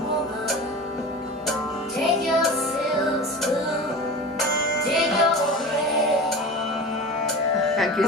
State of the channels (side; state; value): both; normal; correlation 0.32